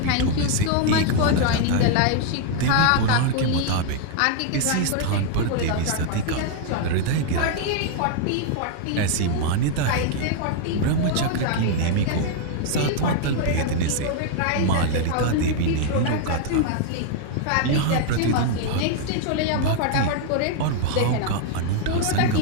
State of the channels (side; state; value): both; different; correlation 0.00